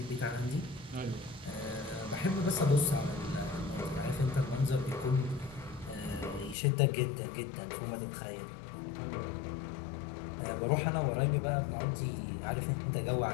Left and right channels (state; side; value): drops out; right; at 6.6 s